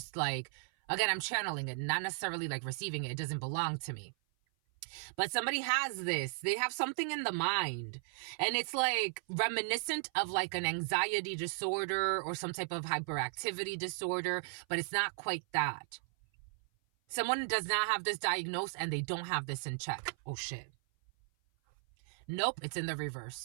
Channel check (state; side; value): silent; left; 54 dB below the other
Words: like, again, I'm channeling it, not necessarily like receiving it. It doesn't belong to me. But somebody has this. They have something in the mind. And it's like reminiscent of like an anxiety disorder or some type of hyperactivity disorder, but it's not quite that. Someone does not have this diagnosed and they don't have this in check. Oh shit. Nope, it's in the reverse.